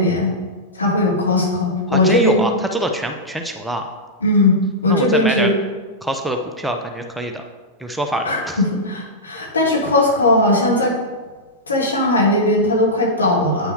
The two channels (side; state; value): both; normal; correlation -0.10